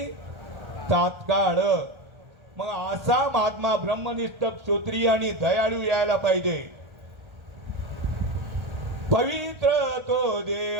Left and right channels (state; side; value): late; left; 1.4 ms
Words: तात्काळ. मग असा महात्मा ब्रह्मनिष्ठ क्षत्रिय आणि दयाळू यायला पाहिजे. पवित्र तो